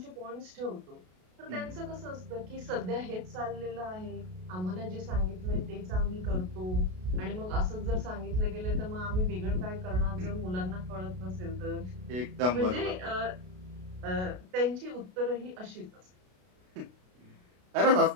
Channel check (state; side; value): late; left; 33 ms